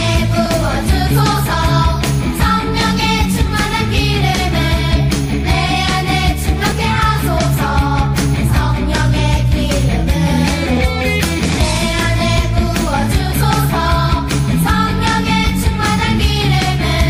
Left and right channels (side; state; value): both; identical; correlation 1.00